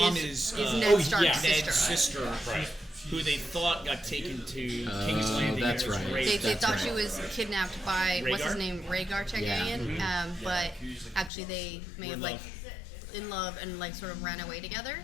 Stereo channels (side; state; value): right; drops out; at 11.3 s